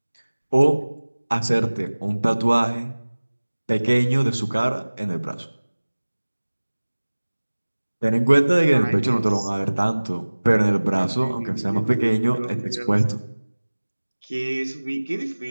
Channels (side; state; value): both; inverted; correlation -1.00